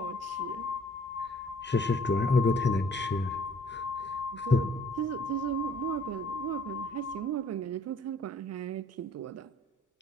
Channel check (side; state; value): both; normal; correlation 0.57